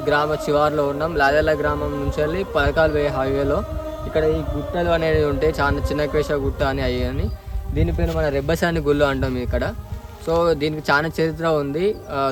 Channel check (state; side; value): identical; both; correlation 1.00